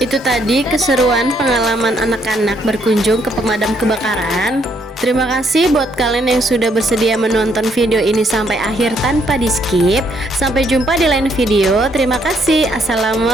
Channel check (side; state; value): both; normal; correlation 0.71